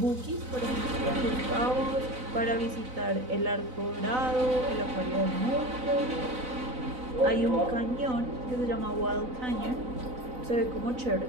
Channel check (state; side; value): late; left; 4.0 ms